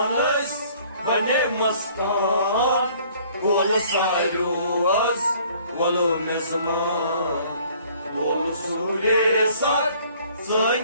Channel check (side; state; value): both; inverted; correlation -0.57